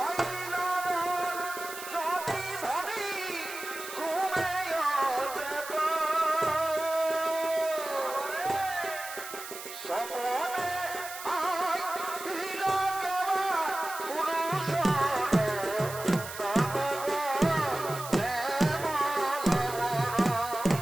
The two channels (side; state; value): right; noise; hiss, 11 dB below the sound